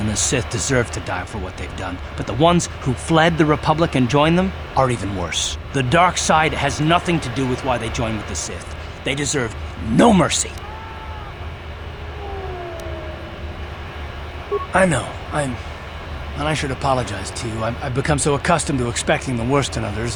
the Sith deserve to die for what they've done, but the ones who fled the Republic and joined them are even worse. The dark side has nothing to do with why they joined with the Sith. They deserve no mercy. I know, and I should apologize to you. I've become so accustomed to expecting the worst in others,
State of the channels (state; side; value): identical; both; correlation 1.00